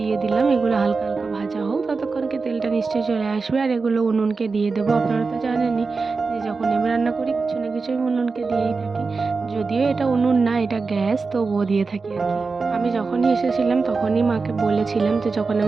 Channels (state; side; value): quieter; left; 4.3 dB